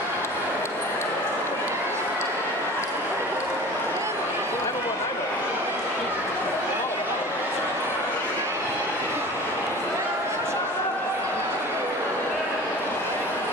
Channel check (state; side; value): normal; both; correlation 0.40